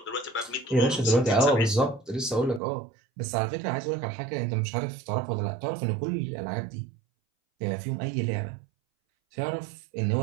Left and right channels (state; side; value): drops out; left; at 2.6 s